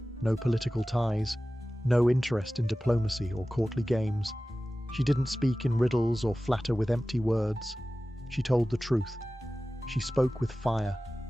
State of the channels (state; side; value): normal; both; correlation 0.96